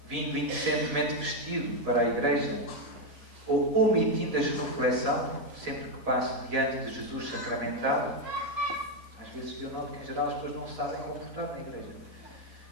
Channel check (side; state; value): left; late; 4.1 ms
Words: vindo inocentemente vestido para a igreja, ou omitindo a genuflexão, sempre que passo diante de Jesus sacramentado. Às vezes eu noto que, em geral, as pessoas não se sabem comportar na igreja.